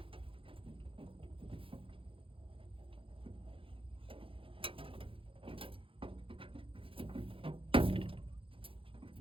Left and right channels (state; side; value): late; left; 0.26 ms